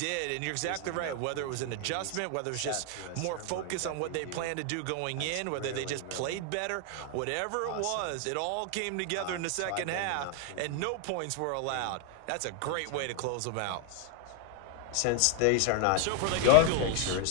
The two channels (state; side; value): different; both; correlation 0.00